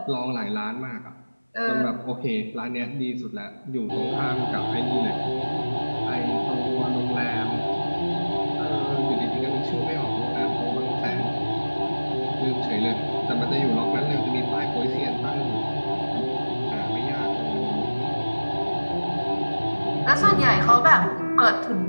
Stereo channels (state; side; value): inverted; both; correlation -1.00